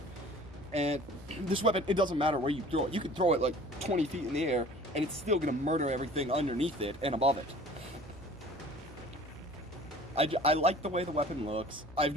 And this weapon, it doesn't matter where you throw it. You can throw it like 20 feet in the air and it's still gonna murder everything underneath it and above it. I like the way the weapon looks. I've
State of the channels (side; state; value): both; normal; correlation 0.47